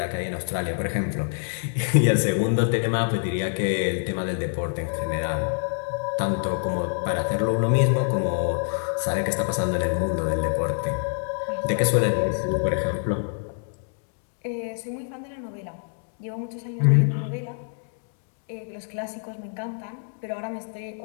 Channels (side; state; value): right; silent; digital silence